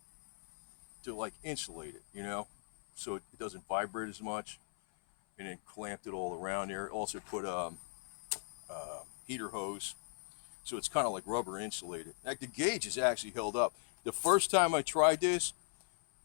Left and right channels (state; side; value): silent; right; 52 dB below the other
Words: like insulate it, so it doesn't vibrate as much, and then clamped it all around there. Also put heater hose. So it's kind of like rubber insulated. Like the gauge is actually held up. The first time I tried this,